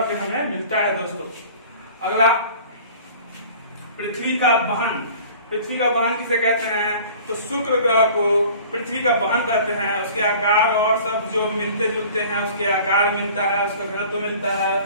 पे हमें मिलता है दोस्तों। अगला पृथ्वी का वहन। पृथ्वी का वहन किसे कहते हैं? तो शुक्र ग्रह को पृथ्वी का वहन करते हैं। उसके आकार और सब जो मिलते जुलते हैं, उसके आकार मिलता है, उसका घनत्व मिलता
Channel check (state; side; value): inverted; both; correlation -0.46